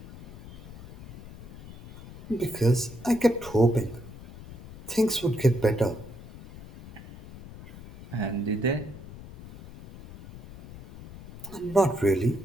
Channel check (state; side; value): noise; left; rumble, 15 dB below the sound